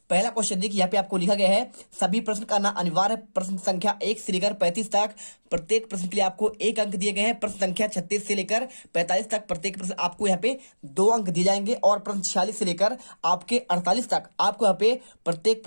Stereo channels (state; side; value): inverted; both; correlation -1.00